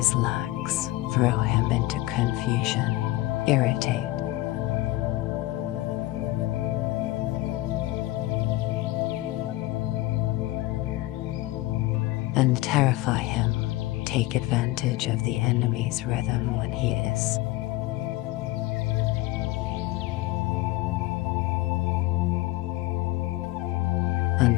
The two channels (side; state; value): right; quieter; 17.9 dB